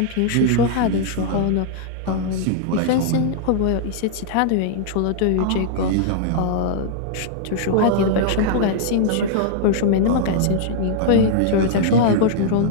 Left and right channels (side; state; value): both; different; correlation -0.01